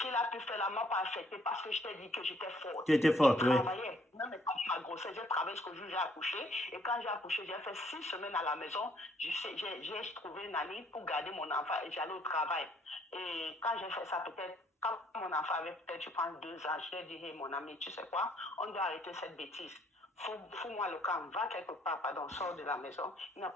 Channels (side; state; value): both; normal; correlation 0.65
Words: a pu faire là m'a pas affecté parce que je t'ai dit que j'étais forte. Tu étais forte, oui. Je travaillais. Même quand ma grossesse, j'ai travaillé jusqu'au jour où j'ai accouché. Et quand j'ai accouché, j'ai fait 6 semaines à la maison. J'ai trouvé une année pour garder mon enfant et j'allais au travail. Et quand j'ai fait ça, peut-être, quand mon enfant avait peut-être, je pense, 2 ans, je lui ai dit, hey, mon ami, tu sais quoi, on doit arrêter cette bêtise. Fous-moi le camp, va quelque part, pardon, sors de la maison. Il n'a